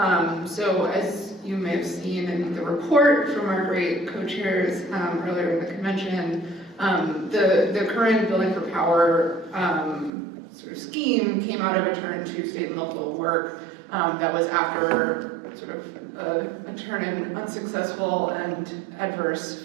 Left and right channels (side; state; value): left; drops out; at 10.1 s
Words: So as you may have seen in the report from our great co-chairs earlier in the convention, the current Building for Power sort of scheme came out of a turn to state and local work that was after sort of a turn in unsuccessful and adverse